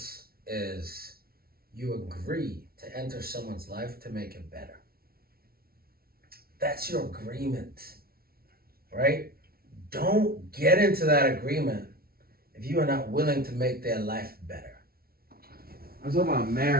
is you agree to enter someone's life to make it better. That's your agreement, right? Don't get into that agreement if you are not willing to make their life better. I'm talking about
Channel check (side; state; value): left; late; 0.44 ms